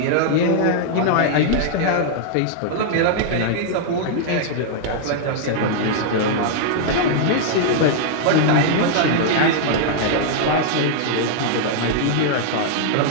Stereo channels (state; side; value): different; both; correlation -0.01